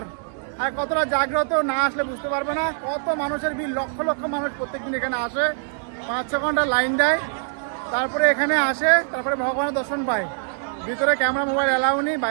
আর কতটা জাগ্রত, না আসলে বুঝতে পারবে না। কত মানুষের ভিড়, লক্ষ লক্ষ মানুষ প্রত্যেকদিন এখানে আসে, 5-6 ঘন্টা লাইন দেয়, তারপরে এখানে আসে, তারপরে ভগবানের দর্শন পায়। ভিতরে ক্যামেরা মোবাইল অ্যালাউ নেই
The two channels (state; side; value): silent; left; 60 dB below the other